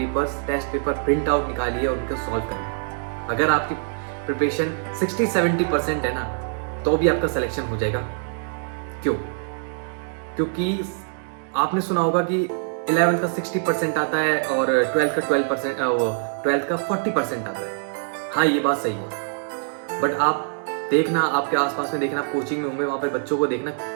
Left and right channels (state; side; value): silent; left; digital silence